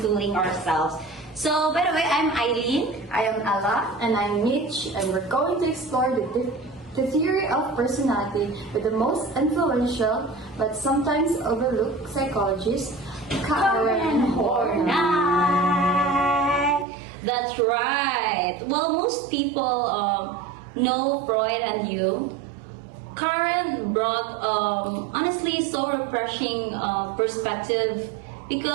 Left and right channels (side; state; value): left; drops out; at 16.9 s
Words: ourselves. So, by the way, I'm Eileen. I am Ella. And I'm Mitch, and we're going to explore the theory of personality with the most influential but sometimes overlooked psychologist, Karen Horney. That's right. Well, most people know Freud and Jung. Karen brought honestly so refreshing perspective